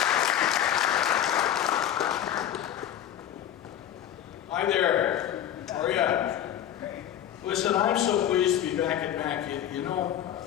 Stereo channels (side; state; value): right; quieter; 10.8 dB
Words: Hi there. How are you? Listen, I'm so pleased to be back at Mac. You know,